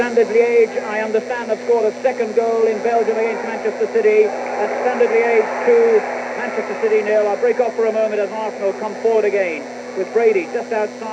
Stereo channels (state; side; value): identical; both; correlation 1.00